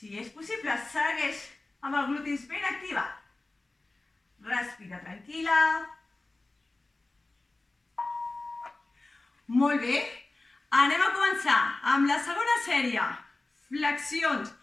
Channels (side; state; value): right; quieter; 3.1 dB